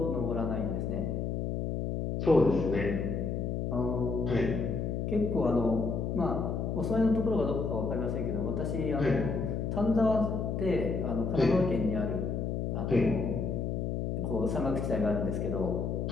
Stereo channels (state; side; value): noise; left; hum, 1 dB below the sound